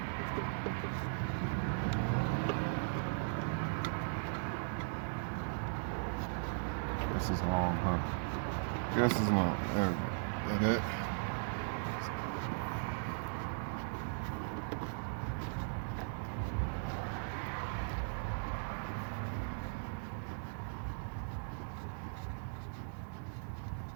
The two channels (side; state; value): left; silent; digital silence